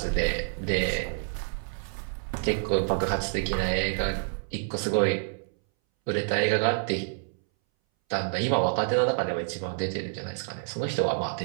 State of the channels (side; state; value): left; silent; 59 dB below the other